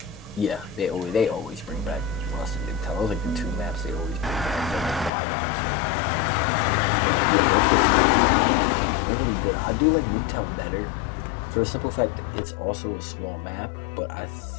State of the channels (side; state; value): right; drops out; at 5.1 s